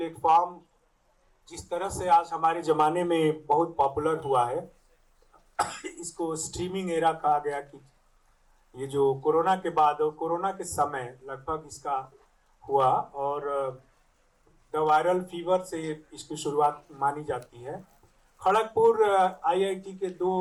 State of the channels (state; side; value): identical; both; correlation 1.00